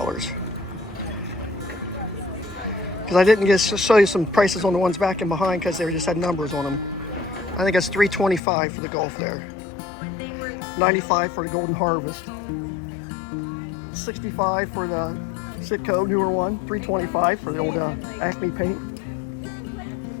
Because I didn't just show you some prices on the ones back and behind because they just had numbers on them. I think it's $325 for the Gulf there. $95 for the Golden Harvest. $65 for the Sitco newer one. $325 for the old Acme paint.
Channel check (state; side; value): drops out; right; at 8.4 s